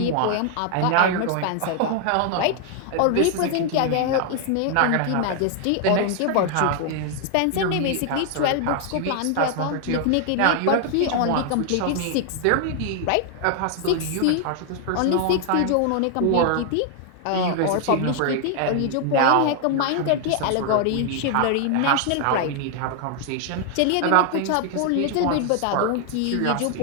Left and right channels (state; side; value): different; both; correlation 0.00